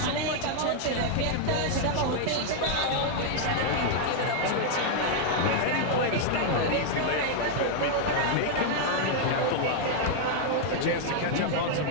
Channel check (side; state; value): both; different; correlation 0.00